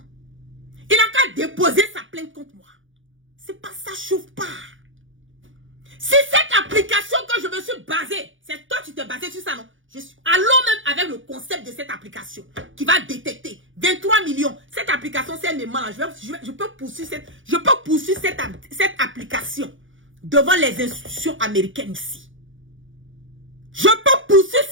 Il n'a qu'à déposer sa plainte contre moi. C'est pas ça, chauffe pas. Si cette application que je me suis basée, c'est toi qui t'es basé sur ça, non? Allons même avec le concept de cette application qui va détecter 23 millions. Cette application, c'est un aimant là. Je peux poursuivre cette application devant les institutions américaines ici. Je peux poursuivre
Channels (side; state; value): left; late; 0.57 ms